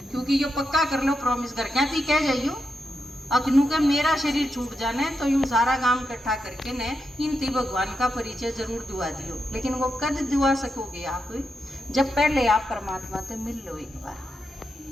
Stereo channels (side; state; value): both; normal; correlation 0.85